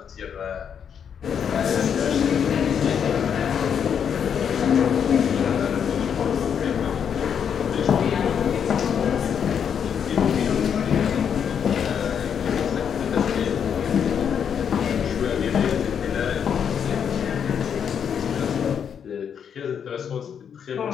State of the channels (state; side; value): quieter; right; 7.8 dB